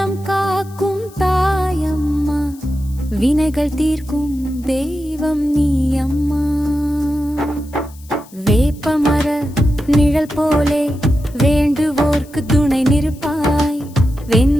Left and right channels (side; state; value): left; noise; hiss, 24 dB below the sound